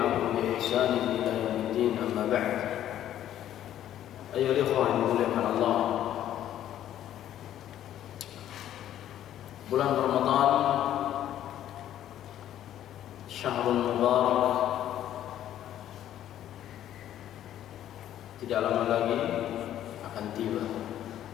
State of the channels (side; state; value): right; quieter; 11.6 dB